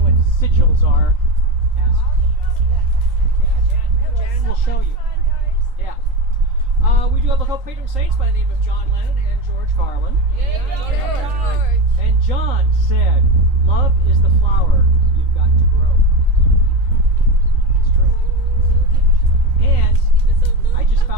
sigils are, ask. Jan will show you. Yeah. We do have a couple patron saints by the name of John Lennon and George Carlin. George. And John said, "Love is the flower you've got to grow." It's true. And I just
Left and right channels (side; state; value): left; late; 3.8 ms